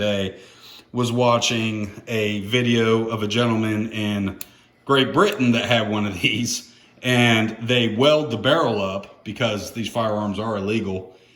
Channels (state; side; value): identical; both; correlation 1.00